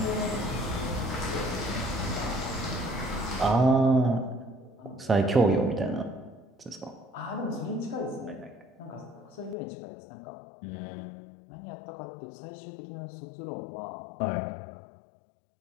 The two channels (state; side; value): drops out; right; at 9.6 s